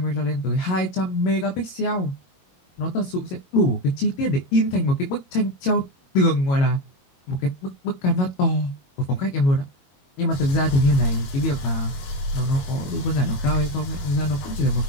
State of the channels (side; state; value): right; late; 22 ms